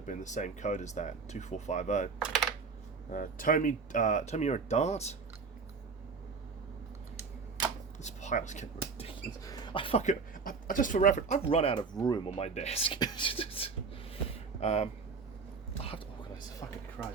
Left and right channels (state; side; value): quieter; left; 4.9 dB